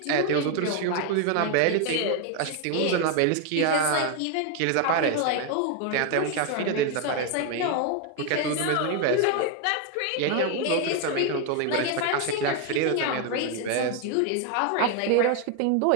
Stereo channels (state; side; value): different; both; correlation 0.01